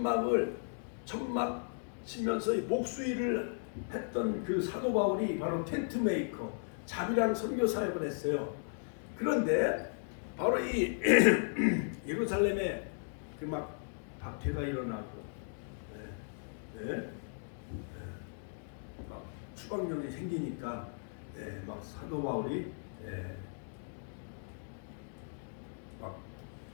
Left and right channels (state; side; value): silent; right; digital silence